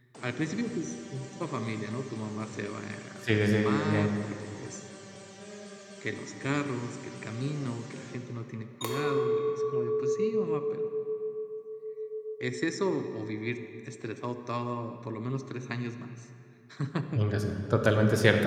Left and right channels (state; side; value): identical; both; correlation 1.00